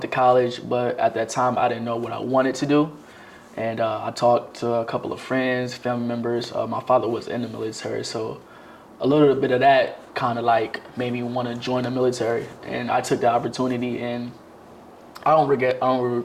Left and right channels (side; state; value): both; identical; correlation 1.00